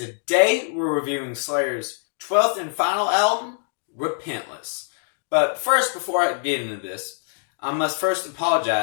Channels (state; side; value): silent; right; digital silence